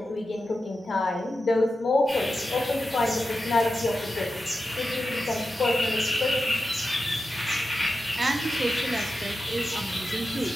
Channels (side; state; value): both; normal; correlation 0.90